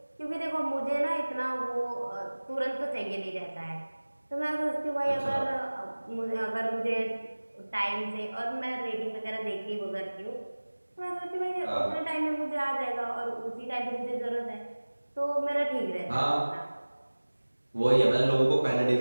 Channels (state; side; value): inverted; both; correlation -1.00